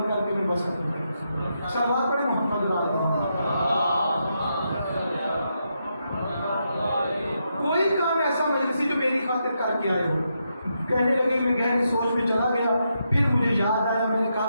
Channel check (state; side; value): inverted; both; correlation -0.82